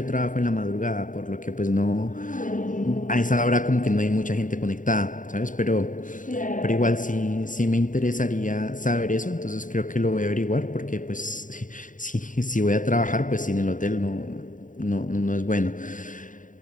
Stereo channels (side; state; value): right; late; 0.38 ms